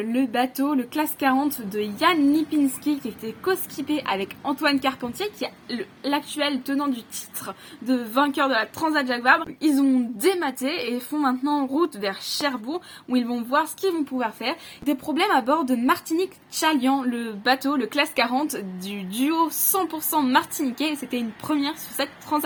le bateau, le classe 40 de Yann Lipinski qui était co-skippé avec Antoine Carpentier, qui est l'actuel tenant du titre de vainqueur de la Transat Jacques Vabre. Ils ont dématé et font maintenant route vers Cherbourg où ils vont voir ce qu'ils vont pouvoir faire. Des problèmes à bord de Martinique Chalian, le bateau, le classe 40 du duo 100% martiniquais. C'était une première sur cette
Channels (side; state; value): both; identical; correlation 1.00